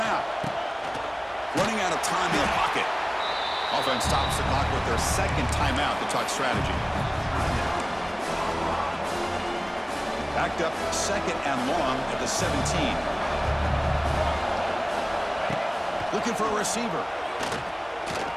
Running out of time in the pocket. Offense stops the clock with their second timeout to talk strategy. Backed up 2nd and long at the 17. Looking for a receiver.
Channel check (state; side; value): identical; both; correlation 1.00